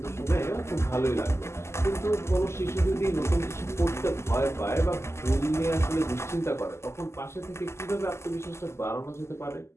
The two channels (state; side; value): late; right; 0.13 ms